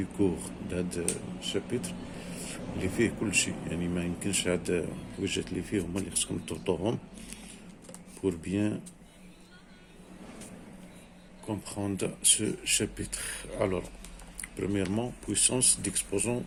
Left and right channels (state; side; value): identical; both; correlation 1.00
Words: كور لهاد الشابيتر اللي فيه كلشي، يعني ما يمكنش هاد الحويجات اللي فيه هما اللي خصكم تضبطوهم pour bien comprendre ce chapitre. Alors, premièrement, puissance d'exposant